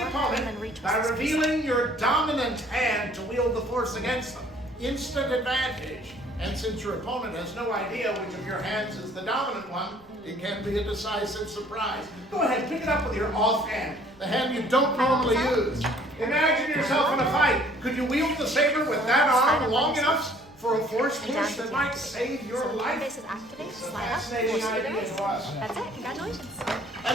opponent by revealing your dominant hand to wield the force against them. Instant advantage. And since your opponent has no idea which of your hands is the dominant one, it can be a decisive surprise. Go ahead, pick it up with your offhand, the hand you don't normally use. Imagine yourself in a fight. Could you wield the saber with that arm long enough for a force push that might save your life? This is activate, It's a slide up, fascinating force idea reverse. to us. That's it, congratulations. And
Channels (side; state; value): right; noise; rumble, 28 dB below the sound